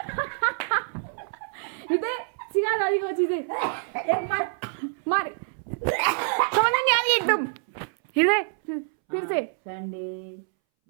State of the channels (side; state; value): left; silent; 61 dB below the other